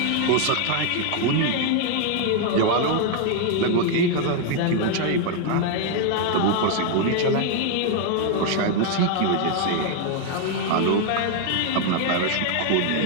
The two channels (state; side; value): different; both; correlation 0.01